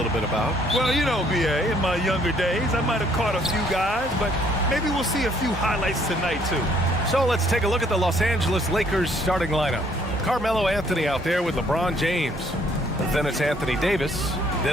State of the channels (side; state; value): both; normal; correlation 0.64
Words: bit about. Well, you know, B.A., in my younger days, I might have caught a few guys, but maybe we'll see a few highlights tonight, too. So let's take a look at the Los Angeles Lakers starting lineup. Carmelo Anthony out there with LeBron James. Then it's Anthony Davis.